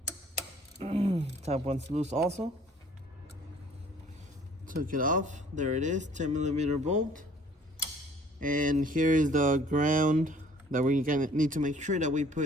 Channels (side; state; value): both; normal; correlation 0.55